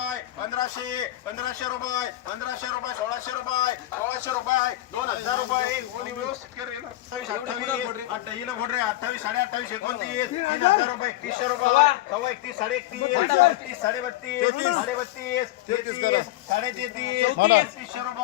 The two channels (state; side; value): quieter; right; 16.1 dB